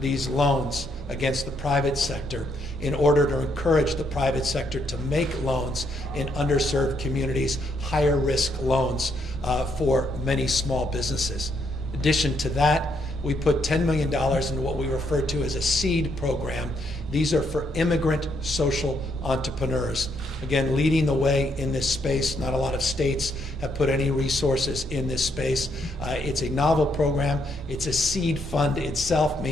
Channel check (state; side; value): normal; both; correlation 0.74